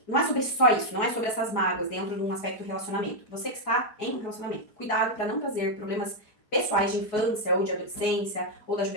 Não é sobre só isso, não é sobre essas mágoas dentro de um aspecto do relacionamento. Você que está em um relacionamento, cuidado para não trazer problemas pessoais de infância ou de adolescência ou da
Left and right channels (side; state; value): right; late; 4.8 ms